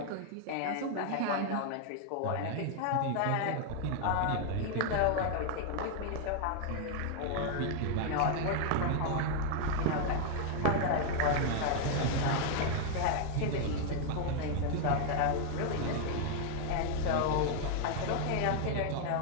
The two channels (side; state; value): both; different; correlation 0.00